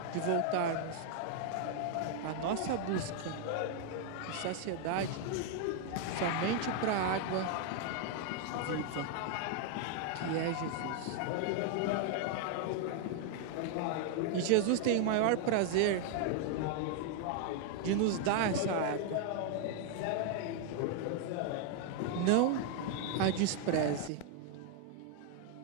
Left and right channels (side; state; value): both; different; correlation 0.00